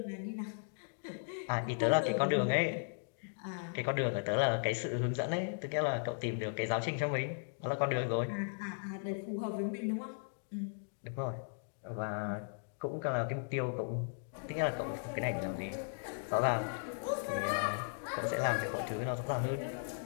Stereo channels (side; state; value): right; silent; digital silence